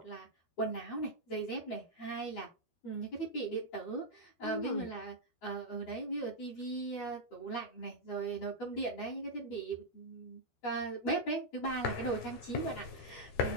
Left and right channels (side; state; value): right; late; 12 ms